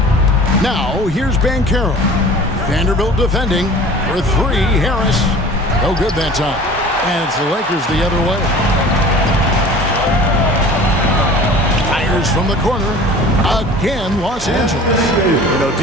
Now here's Markelle. Vanderbilt defending for 3. Harris. No good that time. And it's the Lakers the other way. Fires from the corner. Again, Los Angeles. You know,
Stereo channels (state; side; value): normal; both; correlation 0.43